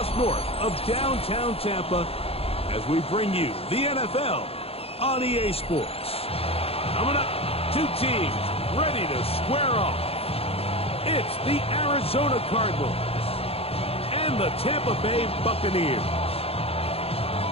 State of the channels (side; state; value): right; late; 0.28 ms